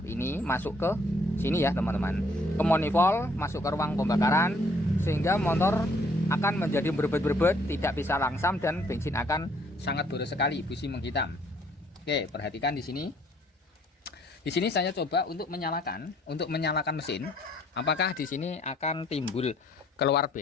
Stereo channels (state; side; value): normal; both; correlation 0.63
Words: ini masuk ke sini ya teman-teman, ke manifold, masuk ke ruang pembakaran, sehingga motor akan menjadi berbet-berbet, tidak bisa langsam, dan bensin akan sangat boros sekali, busi menghitam. Oke, perhatikan di sini. Di sini saya coba untuk menyalakan mesin, apakah di sini akan timbul keluar